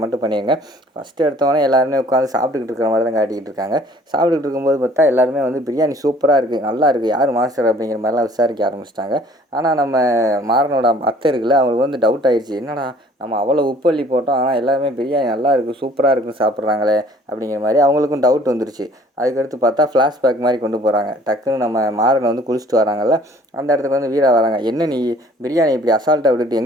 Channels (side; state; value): both; normal; correlation 0.54